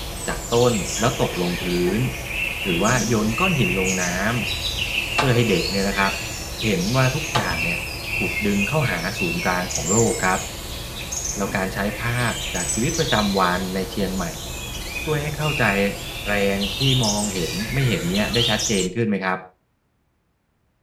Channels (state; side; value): identical; both; correlation 1.00